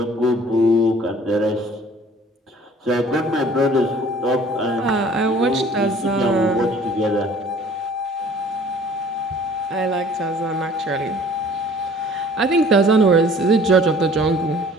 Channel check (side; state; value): both; normal; correlation 0.52